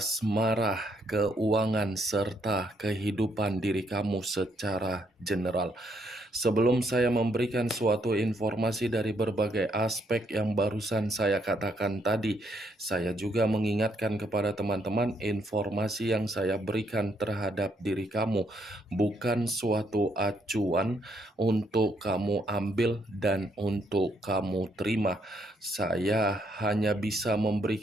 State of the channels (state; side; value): normal; both; correlation 0.73